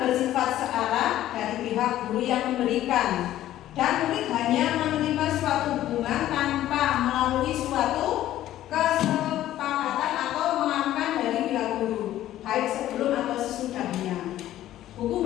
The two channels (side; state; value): right; quieter; 13.4 dB